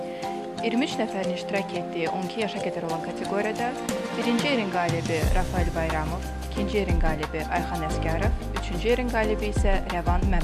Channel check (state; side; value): identical; both; correlation 1.00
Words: 23 nəfərin iştirak etdiyi 12 yaşa qədər olan kateqoriyada birinci yerin qalibi Rafael Bayramov, ikinci yerin qalibi Ayxan Əsgərov, üçüncü yerin qalibi isə Rəvan